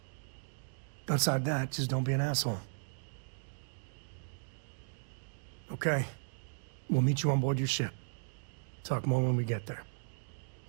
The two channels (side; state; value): left; silent; digital silence